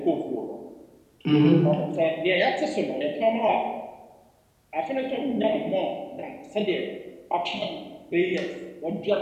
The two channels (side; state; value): both; identical; correlation 1.00